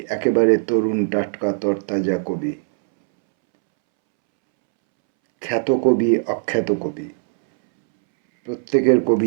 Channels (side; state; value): left; silent; 66 dB below the other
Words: একেবারে তরুণ টাটকা তরতাজা কবি, খ্যাত কবি, অখ্যাত কবি, প্রত্যেকের